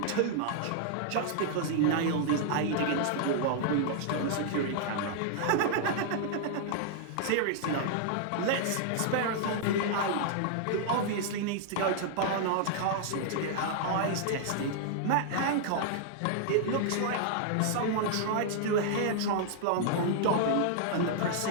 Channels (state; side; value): different; both; correlation -0.01